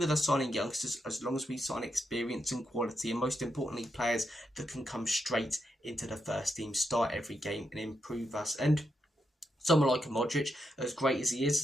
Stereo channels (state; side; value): normal; both; correlation 0.83